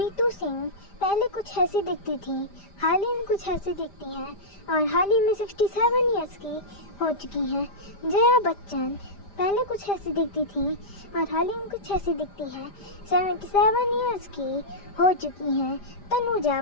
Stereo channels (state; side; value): late; right; 5.0 ms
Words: सिंह पहले कुछ ऐसी दिखती थी, हाल ही में कुछ ऐसी दिखती हैं और हाल ही में 67 इयर्स की हो चुकी हैं। जया बच्चन पहले कुछ ऐसी दिखती थी और हाल ही में कुछ ऐसी दिखती है, 77 इयर्स की हो चुकी हैं। तनुजा